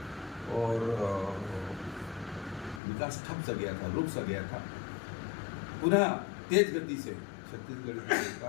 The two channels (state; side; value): drops out; right; at 2.8 s